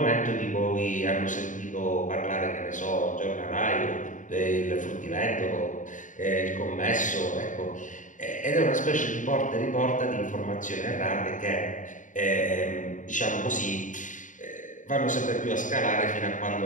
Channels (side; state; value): right; late; 0.37 ms